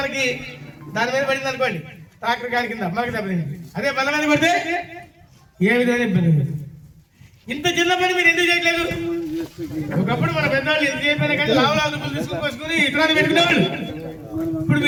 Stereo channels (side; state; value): both; identical; correlation 1.00